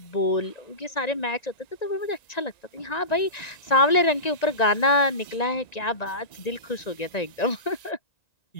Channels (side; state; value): right; late; 1.9 ms